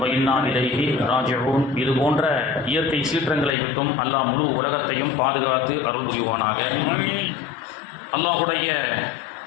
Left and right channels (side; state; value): right; drops out; at 3.6 s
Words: இன்னா இலைஹி ராஜிஊன். இது போன்ற இயற்கை சீற்றங்களை விட்டும் அல்லாஹ் முழு உலகத்தையும் பாதுகாத்து அருள் புரிவானாக. அல்லாஹுடைய